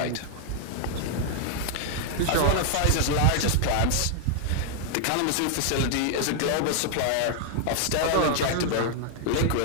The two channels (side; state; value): both; different; correlation 0.00